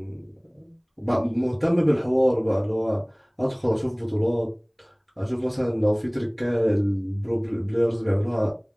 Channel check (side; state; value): both; identical; correlation 1.00